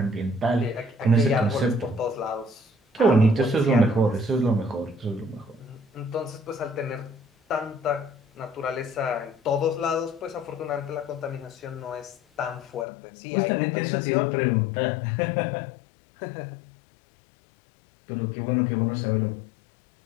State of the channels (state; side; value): drops out; right; at 12.9 s